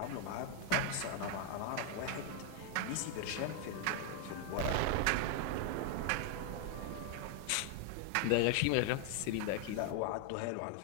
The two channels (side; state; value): both; different; correlation 0.00